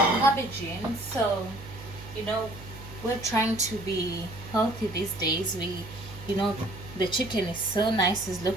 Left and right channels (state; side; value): noise; right; hum, 15 dB below the sound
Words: cabbage in. So, you know, we're trying to be healthy these days. You know, the chicken is so nice. It's